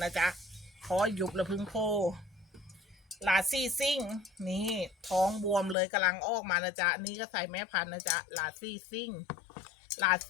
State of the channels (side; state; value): right; drops out; at 5.8 s